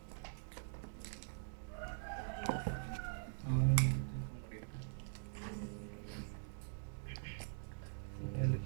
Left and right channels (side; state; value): left; silent; digital silence